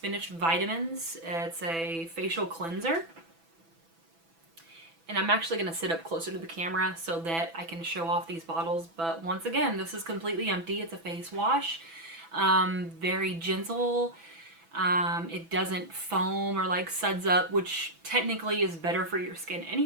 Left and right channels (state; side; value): late; left; 6.0 ms